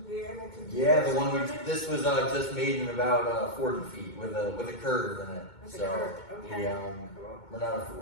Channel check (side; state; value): right; late; 2.2 ms